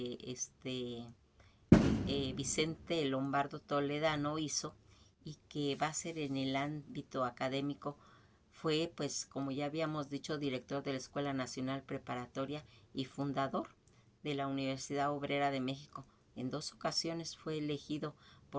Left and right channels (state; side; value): identical; both; correlation 1.00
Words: Vicente Lombardo Toledano hizo y que va a ser en el ámbito académico. Fue, pues, como ya habíamos dicho, director de la Escuela Nacional Preparatoria y fundador de la Universidad Obrera de México. En 2 ocasiones fue elegido